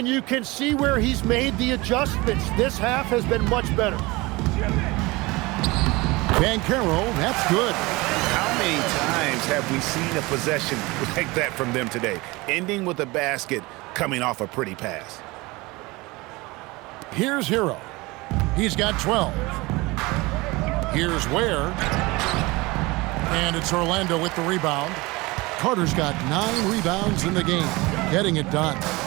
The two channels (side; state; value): left; quieter; 22.8 dB